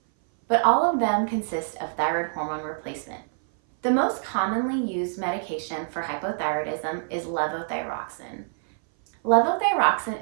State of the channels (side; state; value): left; silent; 58 dB below the other